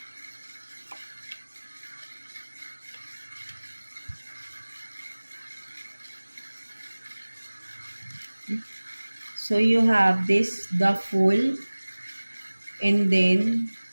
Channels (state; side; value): inverted; both; correlation -1.00